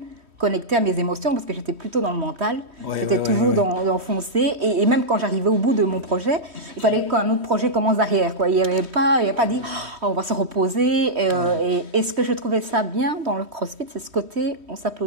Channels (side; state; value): left; late; 3.1 ms